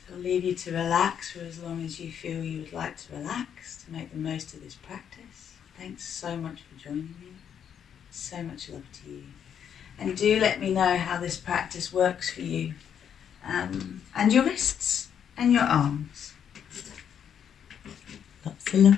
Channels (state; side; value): quieter; right; 8.5 dB